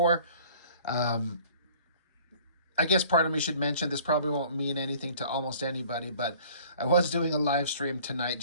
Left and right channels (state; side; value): inverted; both; correlation -0.51